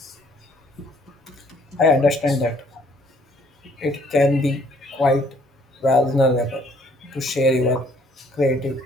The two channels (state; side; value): normal; both; correlation 0.63